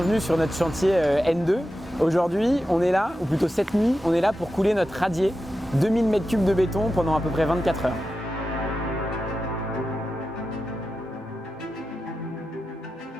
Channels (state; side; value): normal; both; correlation 0.91